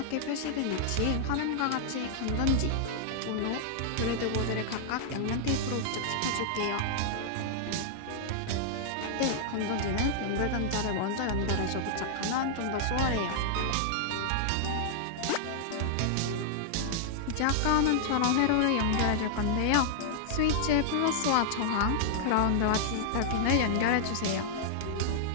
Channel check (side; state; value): both; different; correlation -0.01